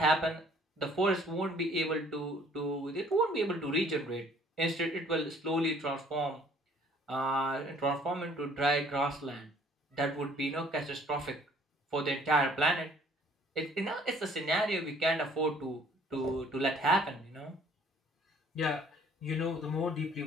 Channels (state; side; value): normal; both; correlation 0.58